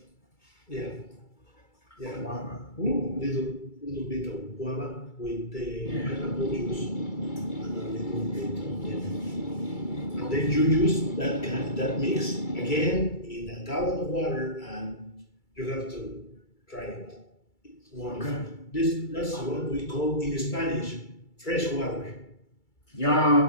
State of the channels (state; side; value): late; right; 2.3 ms